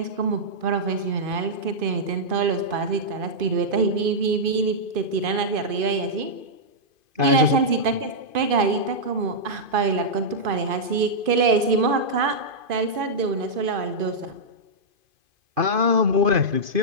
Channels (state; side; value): late; left; 2.5 ms